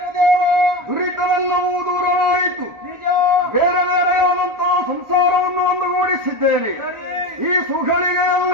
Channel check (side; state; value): left; late; 1.4 ms